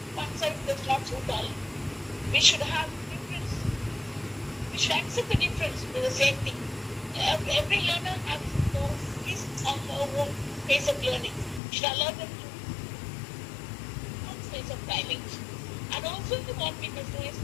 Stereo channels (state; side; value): drops out; right; at 11.6 s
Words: one size does not suit all. We should have difference. We should accept the difference to the same thing. Every learner has his or her own pace of learning. We should allow them to own pace of timing. And also what we must do is